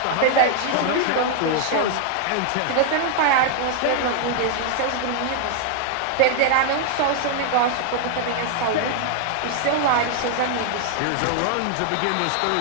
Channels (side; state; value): both; different; correlation 0.00